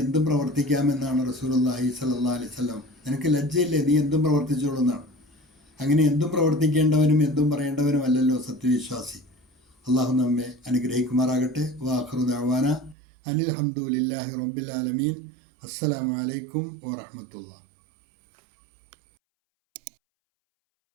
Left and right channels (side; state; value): left; drops out; at 13.0 s